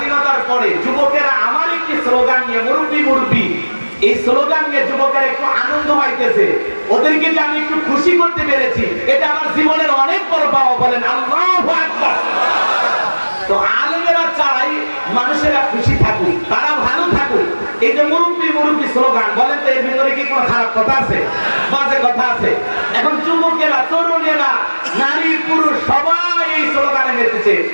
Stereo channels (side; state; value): both; inverted; correlation -1.00